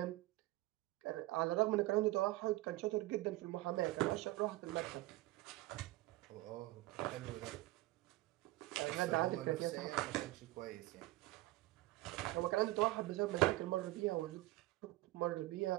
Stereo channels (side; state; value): left; quieter; 18.3 dB